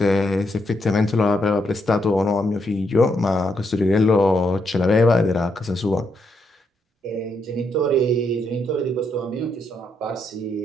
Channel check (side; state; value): both; normal; correlation 0.78